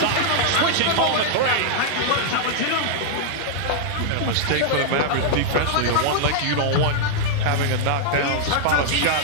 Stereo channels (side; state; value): both; different; correlation -0.01